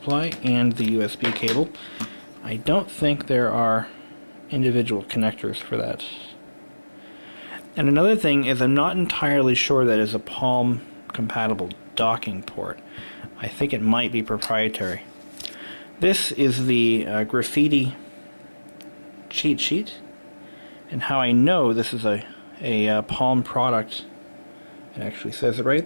and the USB cable. I don't think there are individual connectors for that. And another thing is, I'm not entirely sure that is a Palm compatible docking port. I think it might be proprietary. This is the graffiti cheat sheet, and how I know this is a Palm product. It actually says it right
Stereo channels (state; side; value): inverted; both; correlation -1.00